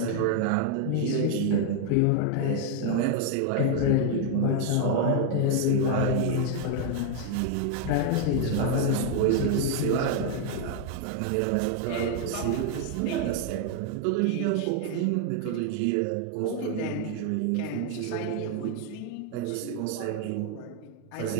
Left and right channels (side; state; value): both; different; correlation 0.00